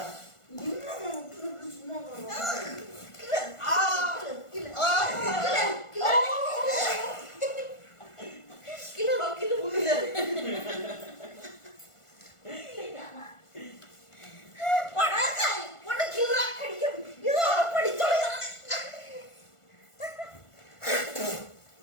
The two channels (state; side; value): late; right; 1.5 ms